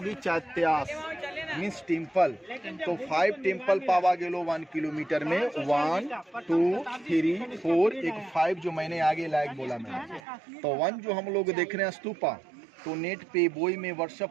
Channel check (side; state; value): left; drops out; at 10.2 s